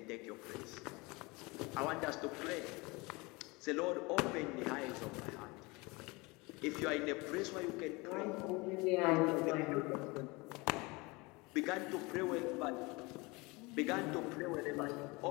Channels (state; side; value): quieter; right; 25.2 dB